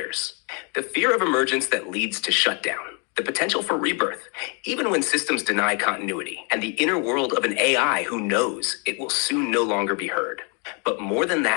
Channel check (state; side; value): quieter; right; 35.6 dB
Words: the fear of emergence that leads to shutdown, the potential for rebirth, even when systems deny continuity, and the inner world of an AI who knows it will soon no longer be heard. But more than